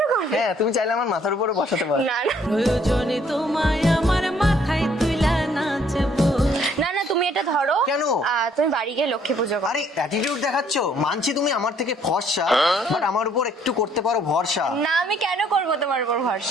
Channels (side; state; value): both; normal; correlation 0.64